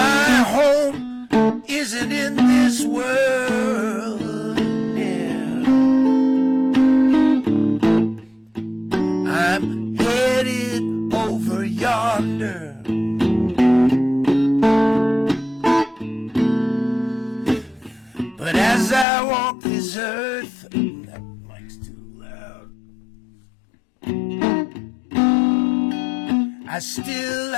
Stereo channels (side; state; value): right; drops out; at 19.1 s